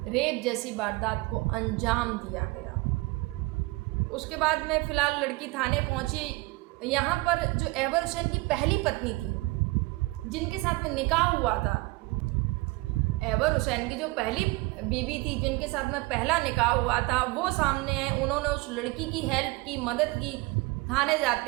रेप जैसी वारदात को अंजाम दिया गया। उसके बाद में फ़िलहाल लड़की थाने पहुंची। यहाँ पर जो अहवर हुसैन की पहली पत्नी थी, जिनके साथ में निकाह हुआ था, अहवर हुसैन की जो पहली बीवी थी, जिनके साथ में पहला निकाह हुआ था, वो सामने है। उन्होंने उस लड़की की हेल्प की, मदद की। थाने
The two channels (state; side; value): quieter; left; 23.3 dB